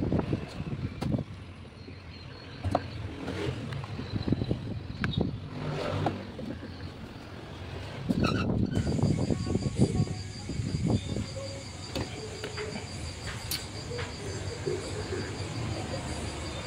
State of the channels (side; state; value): both; identical; correlation 1.00